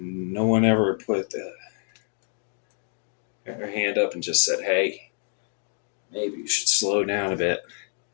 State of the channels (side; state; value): right; silent; 60 dB below the other